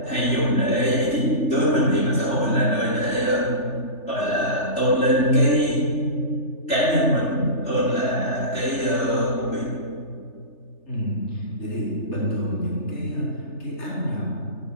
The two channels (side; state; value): right; late; 3.3 ms